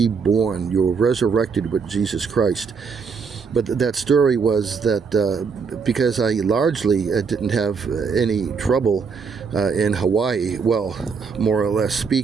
You're resurrected with Jesus Christ. But that story was that because I largely didn't have any trouble in Hawaii, well, more or less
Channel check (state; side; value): quieter; left; 5.5 dB